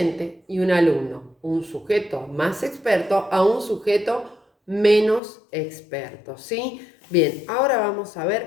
y un alumno, un sujeto más experto a un sujeto menos experto, ¿sí? Bien, ahora vamos a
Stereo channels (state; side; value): drops out; right; at 5.2 s